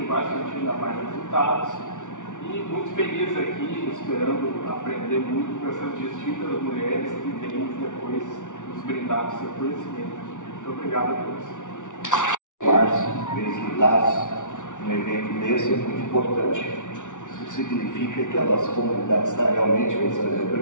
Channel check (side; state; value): right; late; 0.87 ms